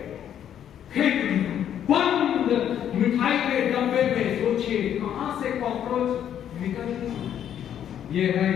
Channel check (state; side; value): quieter; right; 9.8 dB